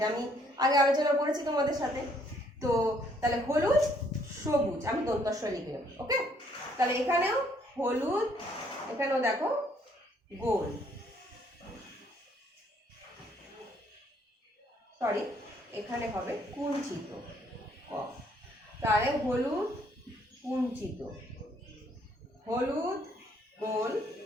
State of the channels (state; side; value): normal; both; correlation 0.66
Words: আমি আগে আলোচনা করেছি তোমাদের সাথে। তো তাহলে হলুদ সবুজ, আমি দন্তস্ব লিখে নেব, ওকে? তাহলে এখানেও হলুদ, এখানেও দেখো গোল, সরি এখানে হবে কুঞ্চিত ক। তাহলে হলুদ কুঞ্চিত, হলুদ গোল,